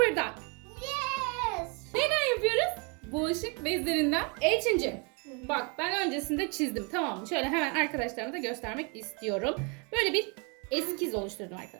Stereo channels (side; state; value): left; quieter; 33.2 dB